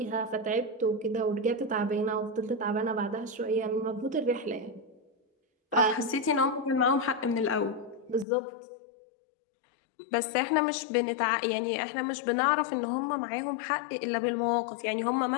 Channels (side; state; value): right; drops out; at 8.2 s